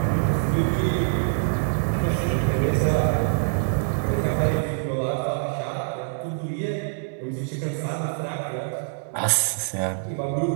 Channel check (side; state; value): left; silent; digital silence